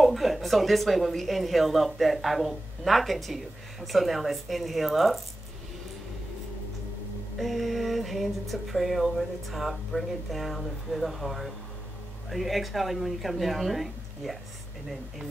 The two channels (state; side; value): normal; both; correlation 0.93